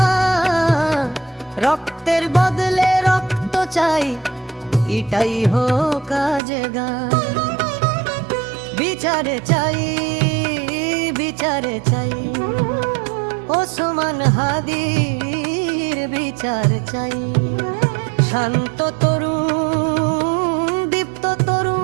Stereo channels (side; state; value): left; drops out; at 6.4 s